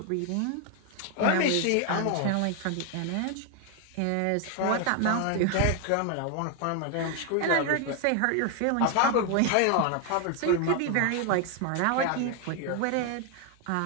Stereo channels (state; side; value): different; both; correlation 0.00